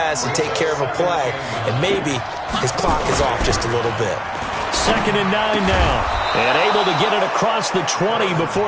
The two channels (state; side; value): identical; both; correlation 1.00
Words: to take care of a play, and maybe his clock is off just a little bit. 2nd and 9 now, and able to get it across the 20